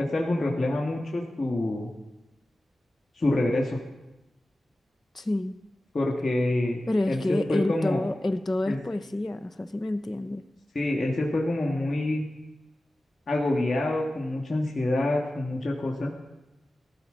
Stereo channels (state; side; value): normal; both; correlation 0.95